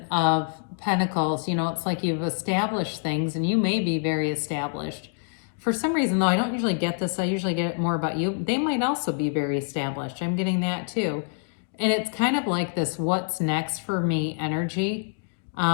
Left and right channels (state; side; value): silent; right; 55 dB below the other